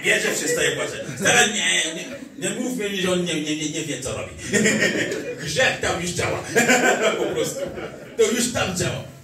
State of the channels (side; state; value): both; identical; correlation 1.00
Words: bierzesz, przestaje płakać. Stara, nie mów mi, że on nie wie, co robi. Grzech tam już działa. Po prostu. To już tam działa.